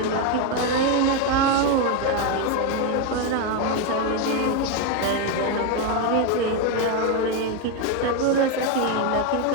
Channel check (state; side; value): different; both; correlation 0.02